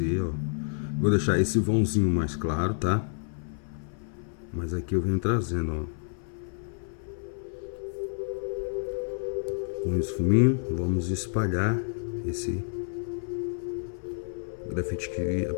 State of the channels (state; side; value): silent; right; 58 dB below the other